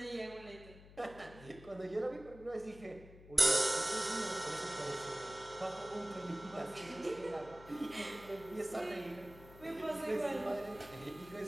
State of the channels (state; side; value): noise; left; hum, 18 dB below the sound